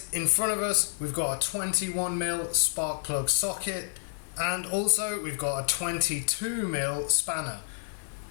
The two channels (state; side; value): silent; right; digital silence